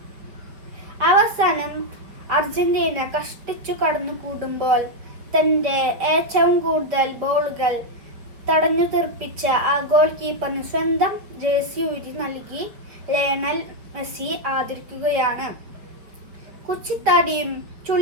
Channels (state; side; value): late; left; 5.1 ms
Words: അവസാനം അർജന്റീന കഷ്ടിച്ചു കടന്നു കൂടുമ്പോൾ തന്റെ ഏറ്റവും കൂടുതൽ ബോളുകൾ തടഞ്ഞു തീർപ്പിച്ച ആ ഗോൾ കീപ്പറിന് സ്വന്തം ജേഴ്സി ഊരി നൽകി ലയണൽ മെസ്സി ആദരിക്കുകയാണ്. കുച്ചിത്താടിയും